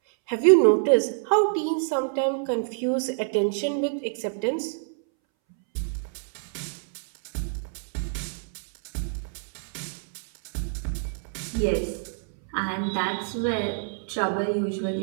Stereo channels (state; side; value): silent; left; 61 dB below the other